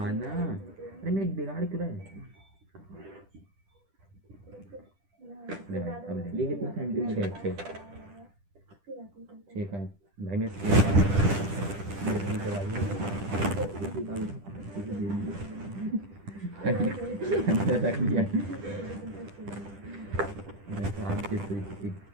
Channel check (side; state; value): left; late; 10 ms